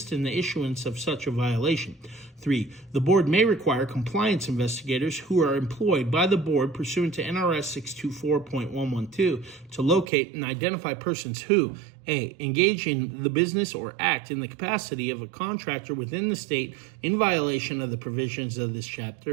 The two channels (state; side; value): drops out; left; at 10.1 s